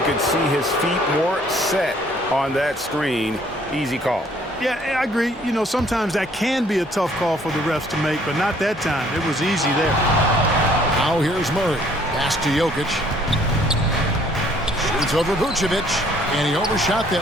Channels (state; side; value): normal; both; correlation 0.61